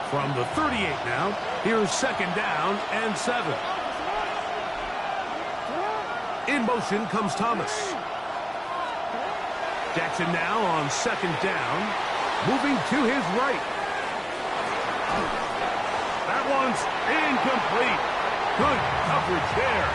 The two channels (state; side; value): identical; both; correlation 1.00